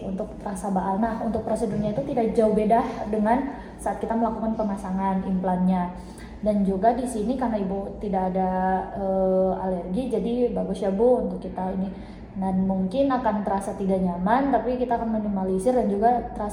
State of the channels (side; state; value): both; identical; correlation 1.00